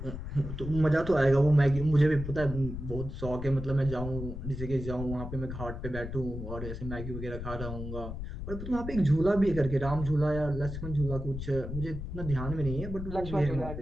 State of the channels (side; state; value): left; noise; rumble, 7 dB below the sound